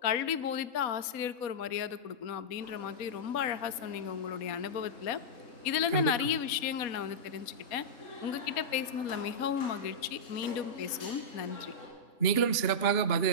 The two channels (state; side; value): late; right; 4.1 ms